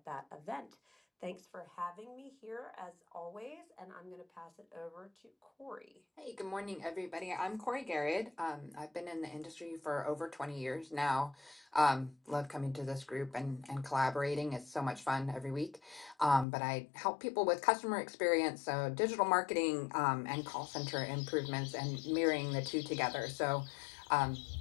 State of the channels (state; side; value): drops out; right; at 16.4 s